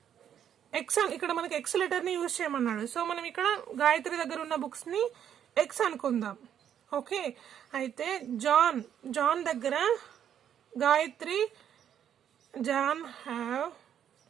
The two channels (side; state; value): left; quieter; 9.4 dB